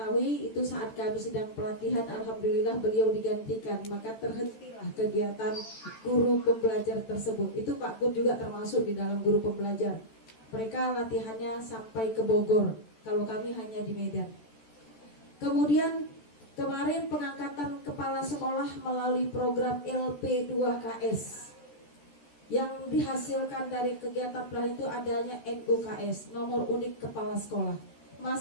itu saat kami sedang pelatihan, alhamdulillah beliau digantikan, maka terhentilah kegiatan guru pembelajar tersebut. Itu Pak Kun juga termasuk di dalam guru pembelajar. Mereka latihannya sampai ke Bogor, kalau kami hanya di Medan. Kemudian kemarin pengangkatan kepala sekolah melalui program LP2KS. Yang dihasilkan dari kegiatan pelatihan itu adanya NUKS, nomor unik kepala sekolah.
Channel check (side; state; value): right; late; 13 ms